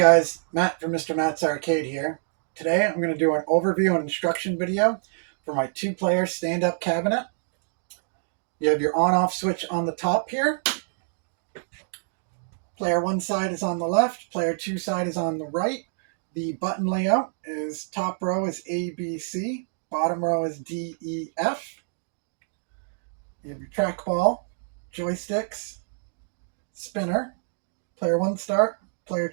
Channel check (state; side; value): silent; left; digital silence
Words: Matt from Mr. Matt's Arcade here. Today I'm going to do an overview and instruction video for my two-player stand-up cabinet. You have your on-off switch on the top here. Player 1 side is on the left, player 2 side is on the right. The button layout is top row is A, B, C, bottom row is D, E, F. You have your trackball, joysticks, spinner, player 1 start, player